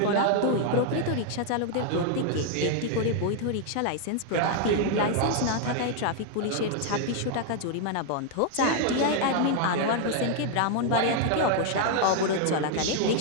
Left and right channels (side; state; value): both; different; correlation 0.00